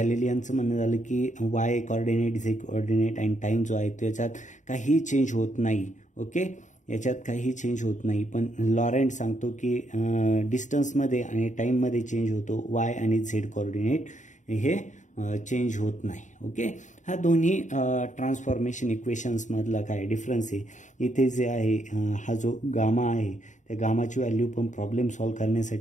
म्हणणं झालं की वाय कोऑर्डिनेट झेड कोऑर्डिनेट आणि टाईम जो आहे त्याच्यात काही चेंज होत नाही. ओके, याच्यात काही चेंज होत नाही. पण लॉरेंट सांगतो की डिस्टन्समध्ये आणि टाईममध्ये चेंज होतो, वाय आणि झेड कोऑर्डिनेट हे चेंज होत नाही. ओके, हा दोन्ही ट्रान्सफॉर्मेशन इक्वेशन्समधला काय डिफरन्स आहे. इथे जे आहे हा जो गामा आहे त्या गामाची व्हॅल्यू पण प्रॉब्लेम सॉल्व्ह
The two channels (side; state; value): right; late; 0.36 ms